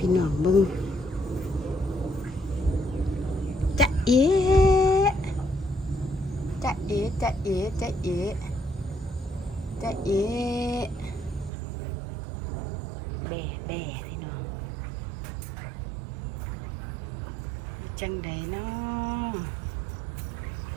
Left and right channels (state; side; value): drops out; left; at 11.5 s